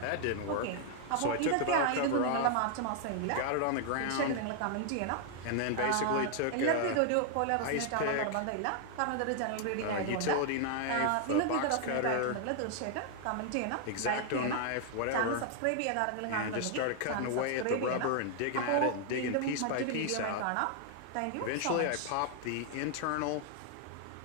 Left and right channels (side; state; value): both; different; correlation 0.00